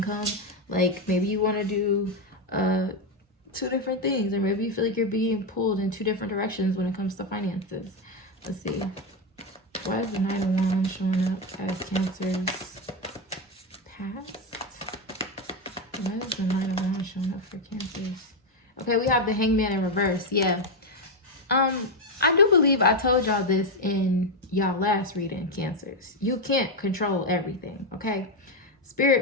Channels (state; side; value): normal; both; correlation 0.07